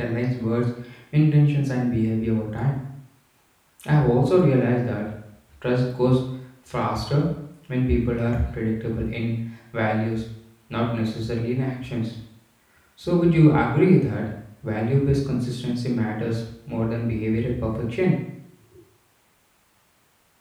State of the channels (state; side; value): identical; both; correlation 1.00